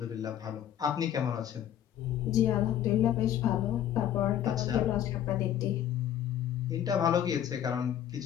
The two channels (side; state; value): right; quieter; 10.7 dB